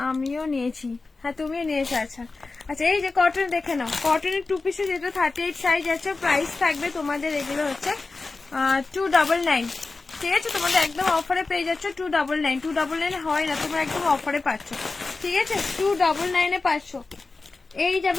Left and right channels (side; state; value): right; quieter; 3.8 dB